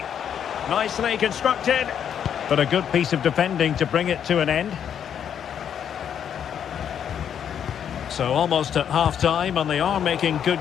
Nicely constructed, but a good piece of defending to bring it to an end. So almost at half-time, and they are making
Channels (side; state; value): right; quieter; 8.7 dB